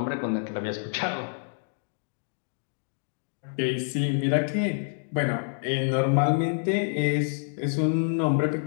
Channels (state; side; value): silent; right; digital silence